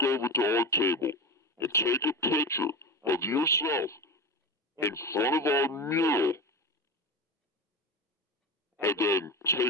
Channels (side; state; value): both; normal; correlation 0.24